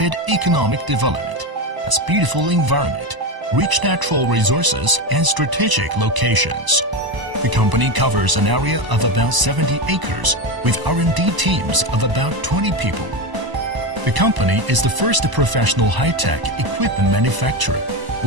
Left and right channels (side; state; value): left; late; 1.0 ms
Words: economic development, has beautiful environment, rich natural resources, and strategic locations. The company covers an area of about 70 acres with R&D teams of about 20 people. The company is the first professional high-tech equipment manufacturer